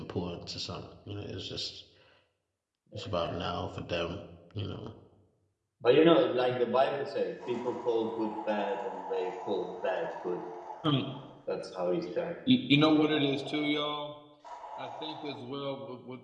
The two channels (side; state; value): both; identical; correlation 1.00